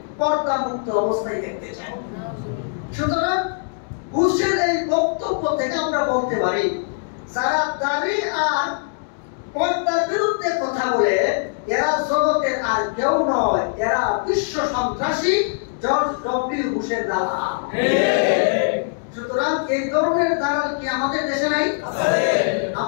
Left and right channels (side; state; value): right; silent; digital silence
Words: পর্দা মুক্ত অবস্থায় দেখতে চাই। সুতরাং বুশের এই বক্তব্য থেকে আমরা বলতে পারি, যারা দাড়ি আর পর্দার বিরুদ্ধে কথা বলে এরা জগতের আর কেউ নয়, এরা বিশ্ব সন্ত্রাসী জর্জ ডব্লিউ বুশের দালাল। সুতরাং এই ধরনের দালাল কি আমাদের দেশে নাই?